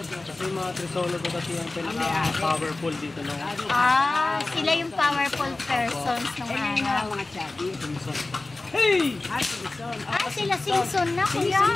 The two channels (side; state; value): right; quieter; 3.1 dB